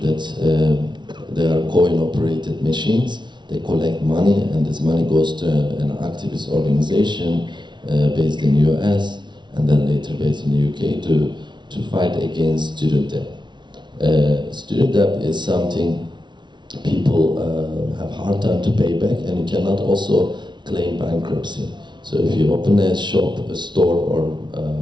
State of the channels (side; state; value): left; late; 0.22 ms